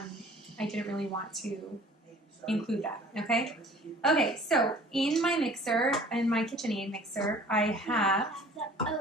didn't really want to include that, okay? Okay, so in my mixer, in my KitchenAid mixer, I have the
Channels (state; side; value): normal; both; correlation 0.50